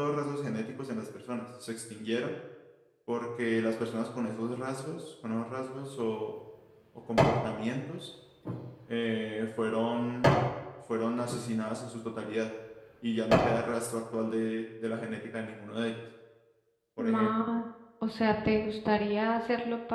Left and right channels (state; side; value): identical; both; correlation 1.00